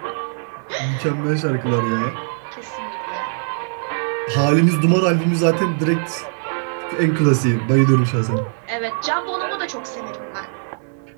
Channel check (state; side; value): silent; left; digital silence